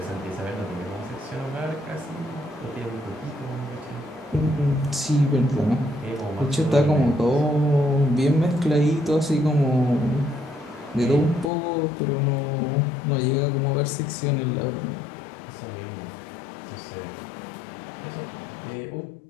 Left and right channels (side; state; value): right; drops out; at 11.5 s